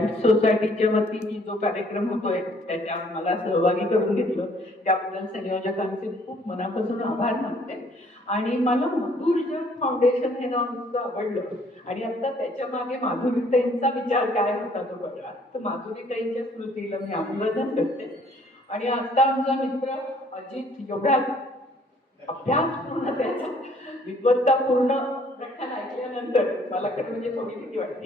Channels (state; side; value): normal; both; correlation 0.61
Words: सोसायटीच्या वतीने जो कार्यक्रम होतोय त्याच्यात मला सहभागी करून घेतलं त्याबद्दल संयोजकांचे खूप मनापासून आभार मानते. आणि मला मधुर जग फाउंडेशन हे नाव इतकं आवडलं आणि आता त्याच्या मागे माधुरीताईंचा विचार काय होता तो कळला. तर माधुरीताईंच्या स्मृतीला मी अभिवादन करते. आणि आता आमचा मित्र अजित एवढा अभ्यास पूर्ण त्याचा विद्वत्तापूर्ण व्याख्यान ऐकल्यानंतर मला खरं म्हणजे थोडी भीती